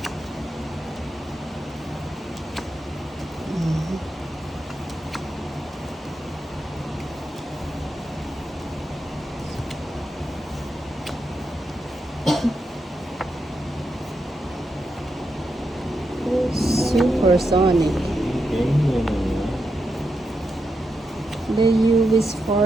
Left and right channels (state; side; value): normal; both; correlation 0.85